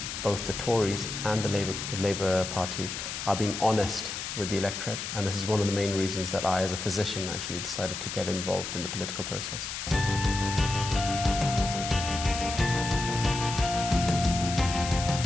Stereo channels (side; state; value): left; noise; hiss, 6 dB below the sound